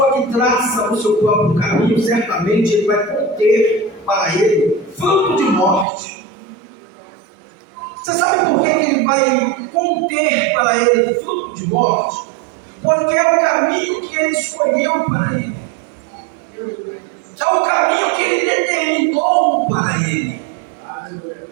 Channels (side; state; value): left; drops out; at 5.9 s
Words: que traça o seu próprio caminho, certamente ele vai conter para ele fruto de morte. Você sabe por que ele vai conter para ele fruto de morte? Porque é o caminho que ele escolheu para ele. É o caminho que ele determinou para ele.